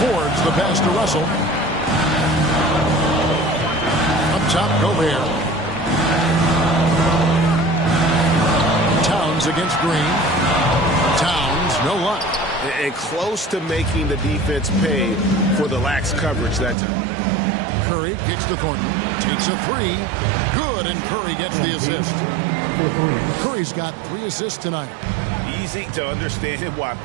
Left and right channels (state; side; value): drops out; left; at 16.8 s